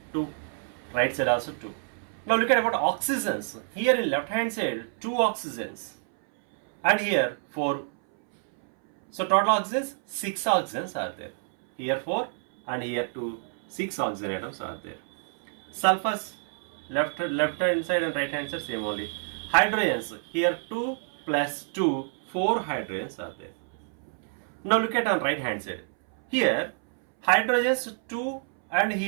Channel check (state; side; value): silent; left; 60 dB below the other